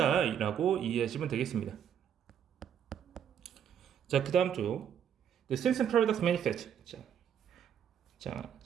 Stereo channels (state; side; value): quieter; left; 8.8 dB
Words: 이해하시면 되겠습니다. 자, 그 다음 쪽 The Simpson Paradox Manifest. 자,